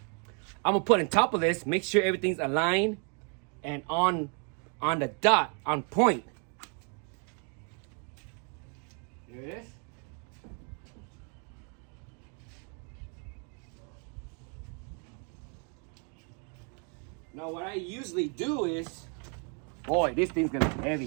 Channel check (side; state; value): left; quieter; 38.6 dB